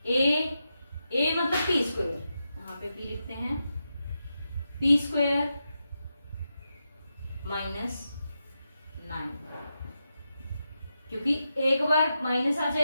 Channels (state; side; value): inverted; both; correlation -0.88